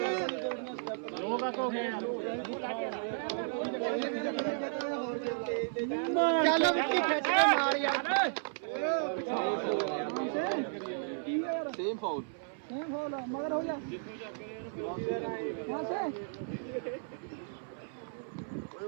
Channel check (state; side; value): silent; left; 55 dB below the other